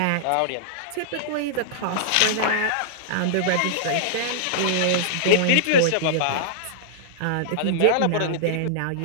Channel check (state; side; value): different; both; correlation -0.02